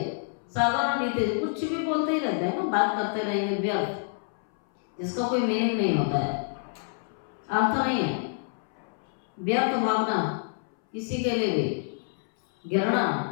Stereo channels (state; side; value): silent; right; 59 dB below the other